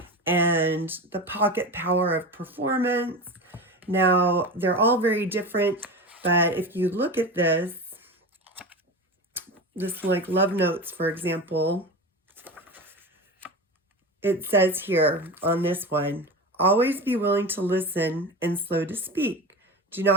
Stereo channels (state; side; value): normal; both; correlation 0.27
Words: and The Pocket Power of Performance. Now, they're all very different, but if you look at this like Love Notes, for example, it says here on this one, always be willing to listen and slow to speak. Do